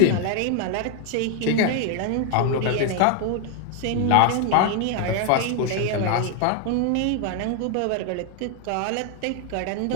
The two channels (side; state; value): both; different; correlation 0.01